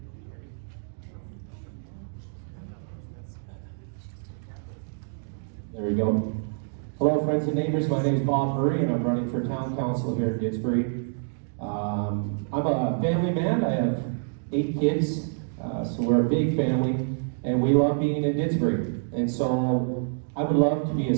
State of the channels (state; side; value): silent; left; digital silence